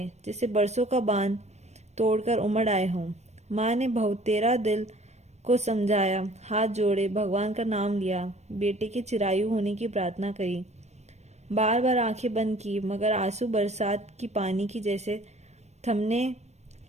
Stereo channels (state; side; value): late; left; 0.32 ms